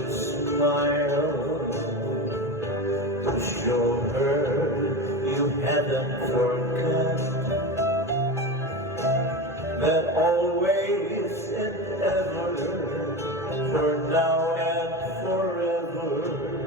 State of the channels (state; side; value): normal; both; correlation 0.23